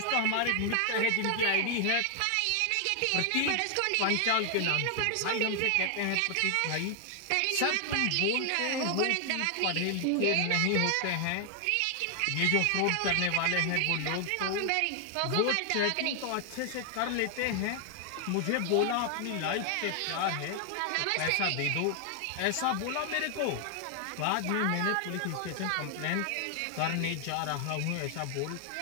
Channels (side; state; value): both; different; correlation 0.00